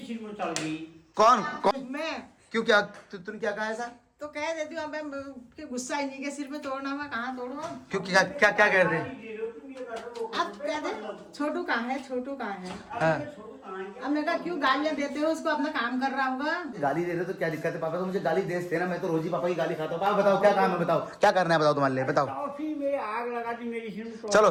सिर में चल गई। कौन? मैं क्यों, क्या तूने क्या कहा ऐसा? तो कह देती हूँ। अब मैं गुस्सा ही नहीं के सिर में तोड़ना, मैं कहाँ तोड़ू? क्यों, क्या क्या क्या कह रहे थे? अब कह दे छोटू कहाँ है, छोटू कहाँ है? हाँ। अब मैं कहा क्यों गालियाँ देते हो उसको? अपना काम कर रहा होगा। गाली दे रहे तो क्या दिक्कत है? पापा तो मुझे गाली दे देना, मैं तो रोज ही पापा की गाली खाता हूँ। पापा बताओ क्या काम है, बताओ क्या करना है, बताओ तुम्हारे लिए, बताओ। टॉफी में आग लगा दी मेरी सिर में। चलो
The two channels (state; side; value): identical; both; correlation 1.00